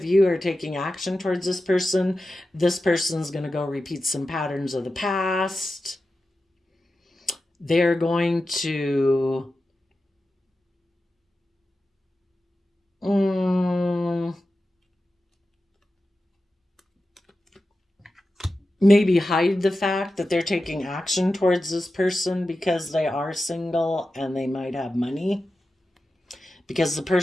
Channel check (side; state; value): both; normal; correlation 0.92